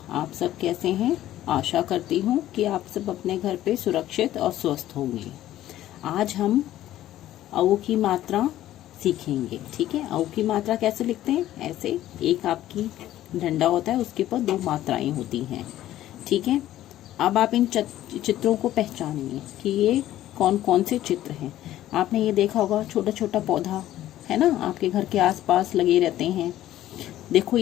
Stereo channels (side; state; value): right; quieter; 13.5 dB